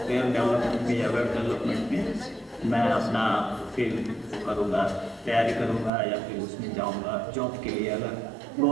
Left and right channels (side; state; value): left; drops out; at 5.9 s